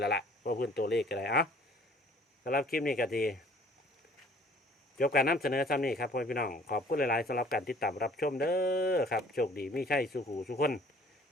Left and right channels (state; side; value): normal; both; correlation 0.54